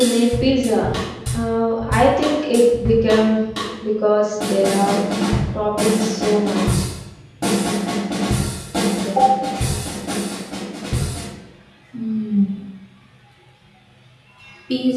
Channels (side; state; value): both; identical; correlation 1.00